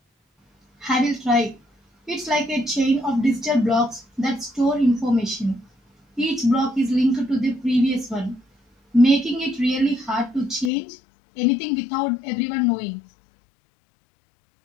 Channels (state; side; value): drops out; right; at 10.7 s